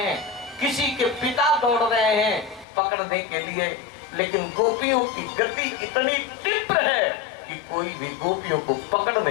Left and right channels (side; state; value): right; drops out; at 2.7 s